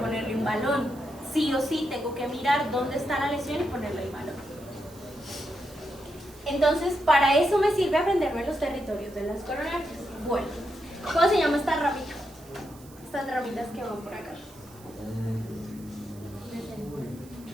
un balón. Sí o sí tengo que mirar dónde está la lesión y ponerle el balón. Entonces, para eso me sirve aprenderme los territorios de las coronarias. Bueno, ¿cómo se llama esta ramita? Estas ramitas que van por acá.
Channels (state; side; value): noise; right; hiss, 23 dB below the sound